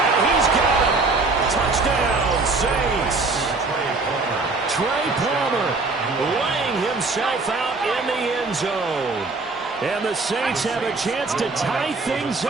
he's got it. Touchdown, Saints. Trey Palmer laying himself out in the end zone. And the Saints have a chance to tie things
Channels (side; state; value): left; quieter; 3.7 dB